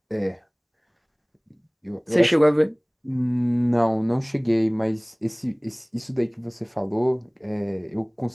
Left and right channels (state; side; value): identical; both; correlation 1.00